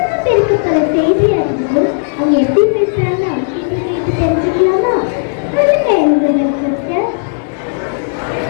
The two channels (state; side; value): silent; right; digital silence